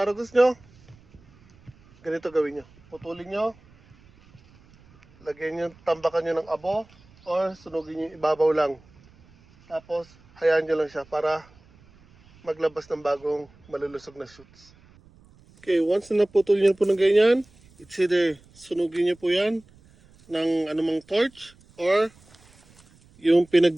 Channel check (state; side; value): noise; right; rumble, 28 dB below the sound